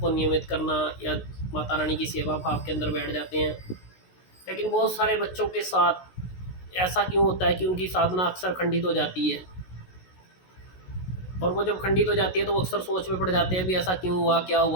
को नियमित करना या माता रानी की सेवा भाव के अंदर बैठ जाते हैं। लेकिन बहुत सारे बच्चों के साथ ऐसा क्यों होता है कि उनकी साधना अक्सर खंडित हो जाती है, और वो जब खंडित हो जाती है तो वो अक्सर सोच में पड़ जाते हैं भी ऐसा क्यों हुआ, क्या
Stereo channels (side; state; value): right; late; 16 ms